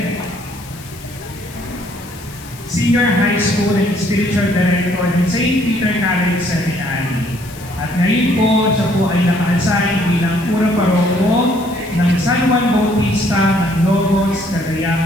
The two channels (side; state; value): left; noise; hiss, 19 dB below the sound